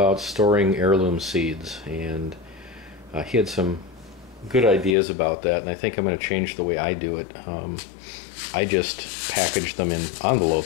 storing heirloom seeds, and he had some good ideas about that, and I think I'm going to change the way I do it. I just package them in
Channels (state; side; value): drops out; right; at 5.0 s